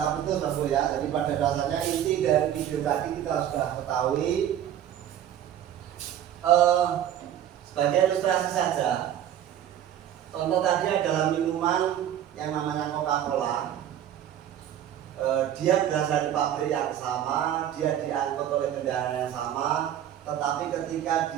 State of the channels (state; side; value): quieter; left; 10.8 dB